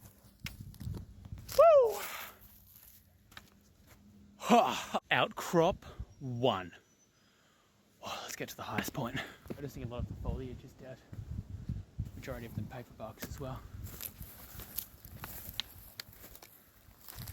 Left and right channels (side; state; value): both; identical; correlation 1.00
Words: Outcrop 1. Oh, let's get to the highest point. Noticing a lot of the foliage is dead. Majority of them paper barks as well.